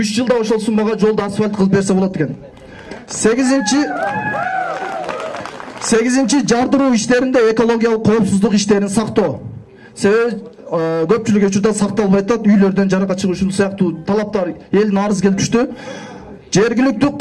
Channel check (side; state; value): both; identical; correlation 1.00